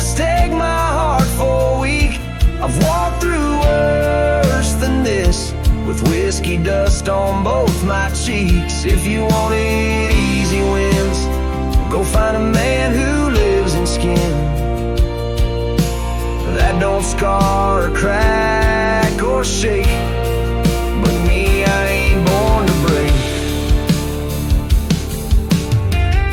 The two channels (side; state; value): both; identical; correlation 1.00